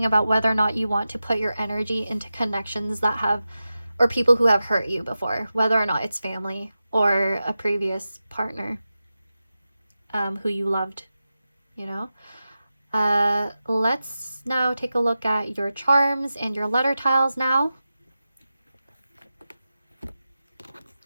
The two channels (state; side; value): inverted; both; correlation -0.93